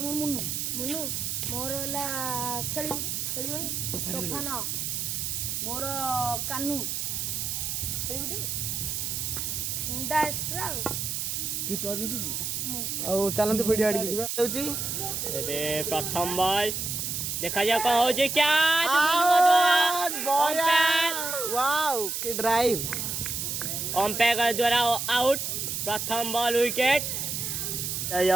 मुन्नू मुन्नू मोर होला खेली तोफान मोर कानू खेली मुंडा एक्स्ट्रा और चलंतु वीडियो आडी जीवा होची एबे प्रथम बॉल देखा जा कौन हो जे क्या वाओ की ड्राइव अंपायर द्वारा आउट प्रथम बॉल विकेट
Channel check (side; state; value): right; noise; hiss, 2 dB below the sound